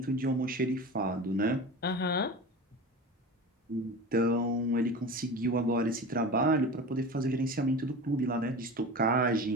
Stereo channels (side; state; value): both; normal; correlation 0.32